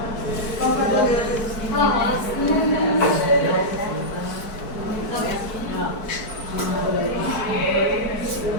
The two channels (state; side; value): late; right; 4.5 ms